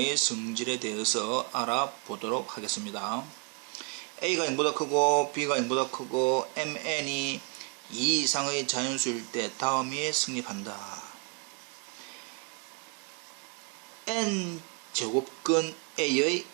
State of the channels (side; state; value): left; quieter; 32.0 dB